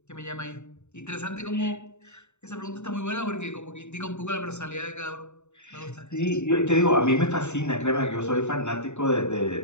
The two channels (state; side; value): late; right; 0.82 ms